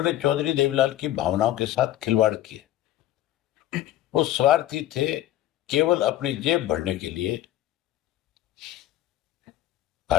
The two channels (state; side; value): quieter; right; 13.7 dB